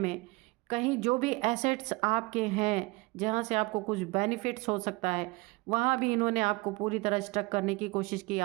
कहीं जो भी एसेट्स आपके हैं जहाँ से आपको कुछ बेनिफिट्स हो सकता है, वहाँ भी इन्होंने आपको पूरी तरह स्टक करने की कोशिश की,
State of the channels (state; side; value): quieter; left; 24.4 dB